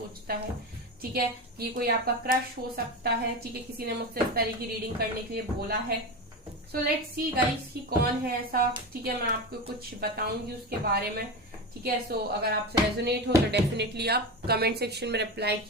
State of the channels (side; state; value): both; normal; correlation 0.21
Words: है। ठीक है, ये कोई आपका क्रश हो सकता है। ठीक है, किसी ने मुझसे इस तरह की रीडिंग करने के लिए बोला है। सो लेट्स सी गाइस कि कौन है ऐसा। ठीक है, मैं आपको कुछ बताऊंगी उसके बारे में। ठीक है, सो अगर आपसे रेजोनेट हो तो डेफिनेटली आप कमेंट सेक्शन में रिप्लाई